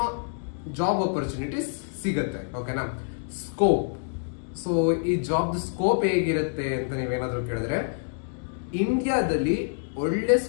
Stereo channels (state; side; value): silent; right; digital silence